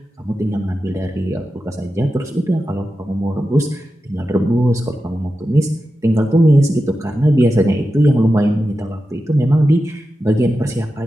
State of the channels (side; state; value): both; normal; correlation 0.91